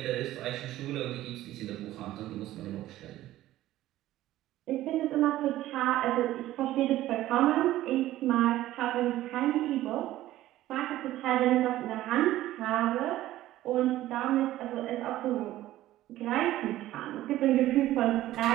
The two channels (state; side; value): quieter; left; 14.8 dB